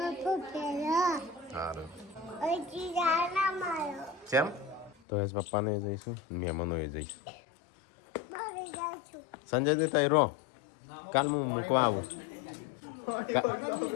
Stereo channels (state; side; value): drops out; right; at 5.0 s